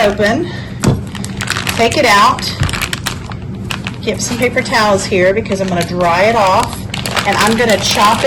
take it out, get some paper towels here because I'm gonna dry it off, and I'm gonna chop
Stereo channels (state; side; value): identical; both; correlation 1.00